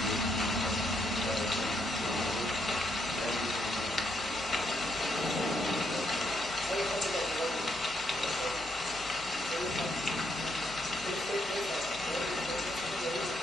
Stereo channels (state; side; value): normal; both; correlation 0.76